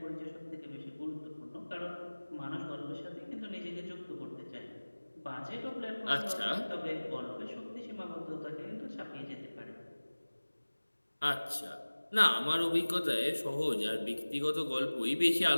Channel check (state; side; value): inverted; both; correlation -1.00